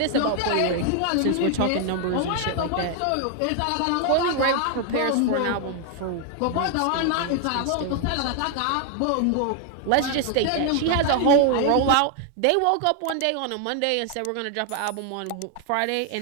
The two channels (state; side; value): different; both; correlation 0.00